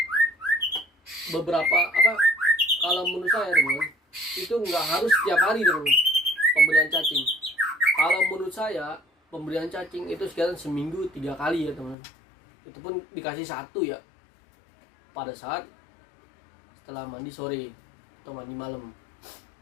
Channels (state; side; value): drops out; right; at 12.0 s